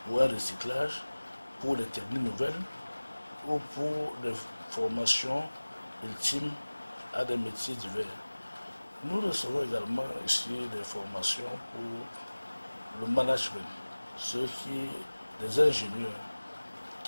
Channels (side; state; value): both; inverted; correlation -1.00